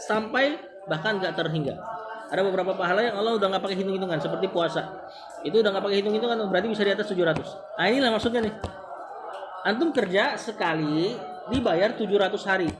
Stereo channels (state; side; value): identical; both; correlation 1.00